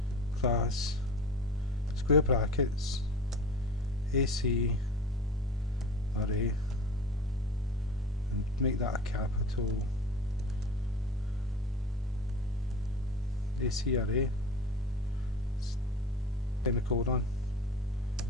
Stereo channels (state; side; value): normal; both; correlation 0.36